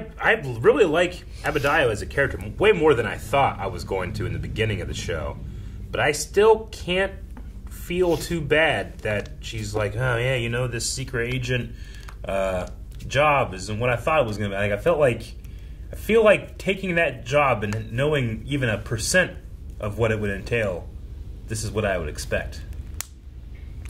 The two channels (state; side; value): identical; both; correlation 1.00